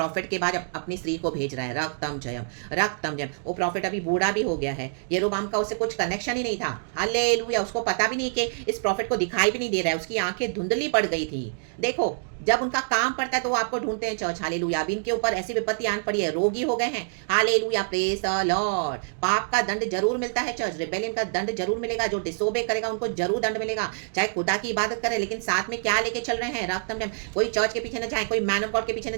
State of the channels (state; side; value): silent; left; digital silence